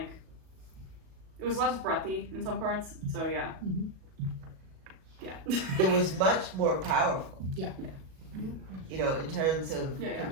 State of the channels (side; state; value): left; late; 37 ms